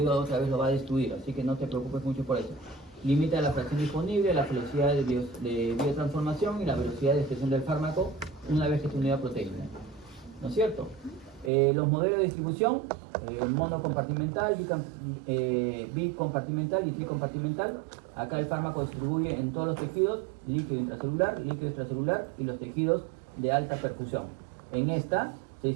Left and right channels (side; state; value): left; drops out; at 11.5 s